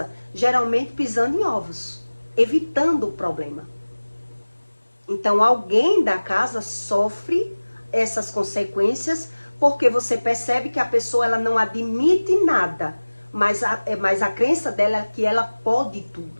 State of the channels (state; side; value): inverted; both; correlation -1.00